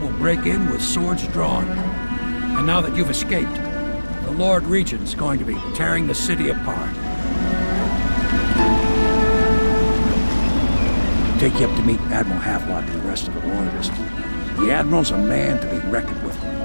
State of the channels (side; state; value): both; inverted; correlation -1.00